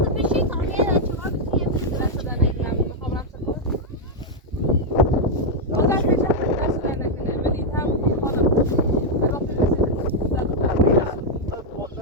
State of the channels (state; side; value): normal; both; correlation -0.01